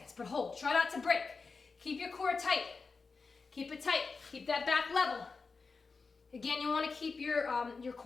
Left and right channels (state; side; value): quieter; right; 4.5 dB